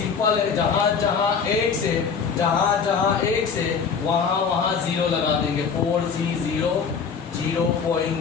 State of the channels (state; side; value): quieter; right; 6.0 dB